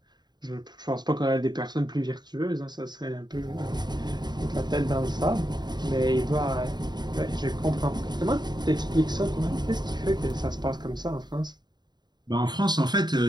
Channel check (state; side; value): late; left; 0.21 ms